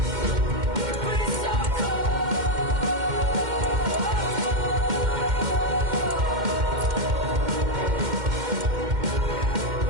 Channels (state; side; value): late; left; 2.1 ms